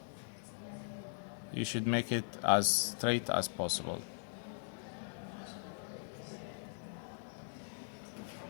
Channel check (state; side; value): silent; right; 51 dB below the other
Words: You should make it as straight as possible.